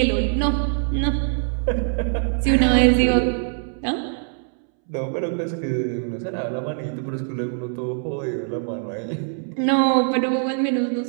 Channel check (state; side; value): silent; left; 64 dB below the other